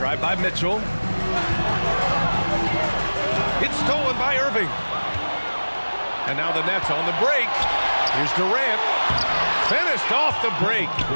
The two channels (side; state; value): both; inverted; correlation -1.00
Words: by Mitchell. It's stolen by Irving. And now the Nets on the break. Here's Durant. Finished off the break.